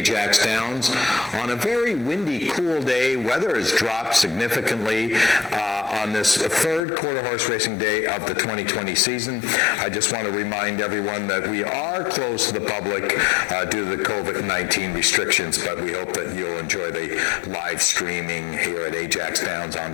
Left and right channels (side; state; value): right; drops out; at 6.8 s